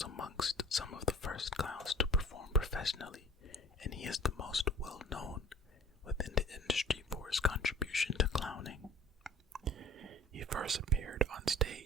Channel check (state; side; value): normal; both; correlation 0.46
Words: amongst some of the first clowns to perform professionally, and he is the most well known within the industry for his contribution to clowning. He first appeared on